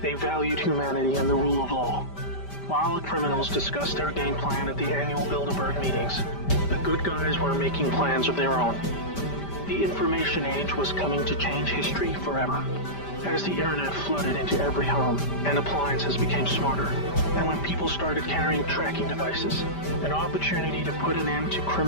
They valued humanity and the rule of law. While the criminals discussed their game plan at the annual Bilderberg meetings, the good guys were making plans of their own. The information age was coming to change history forever. As the internet flooded into every home and appliances became smarter, and when people started carrying tracking devices, an opportunity to put an end to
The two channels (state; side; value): late; right; 5.1 ms